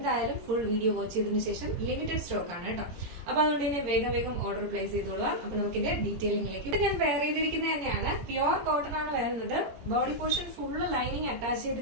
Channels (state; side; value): late; left; 17 ms